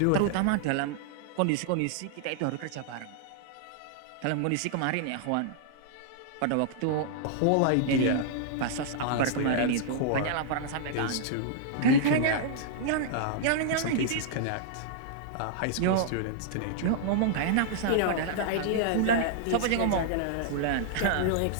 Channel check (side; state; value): both; different; correlation -0.01